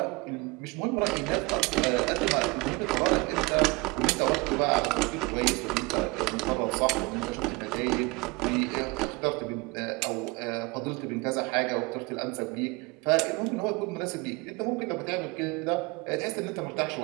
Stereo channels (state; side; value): quieter; left; 25.6 dB